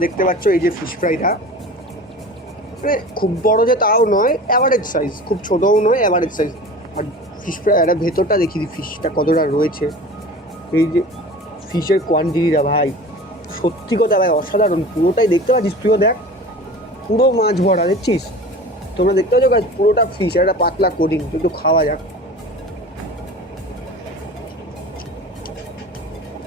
দেখতে পাচ্ছ এই যে ফিশ ফ্রাইটা, মানে খুব বড় যে তাও নয়, অ্যাভারেজ সাইজ, খুব ছোটও নয়, অ্যাভারেজ সাইজ। আর ফিশ ফ্রাই এটা ভেতরটা দেখি দিই ফিশটা কতটা রয়েছে। এই যে ফিশের কোয়ান্টিটিটা ভাই, সত্যি কথা ভাই অসাধারণ। পুরোটাই দেখতে পাচ্ছিস, তুইও দেখ, পুরো মাছ ভরা দেখছিস। তোমরা দেখতে পাচ্ছ গাইস, পুরোটা ফিশ, একটা পাতলা কোডিং। একটু খাওয়া যাক।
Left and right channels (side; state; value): both; normal; correlation 0.37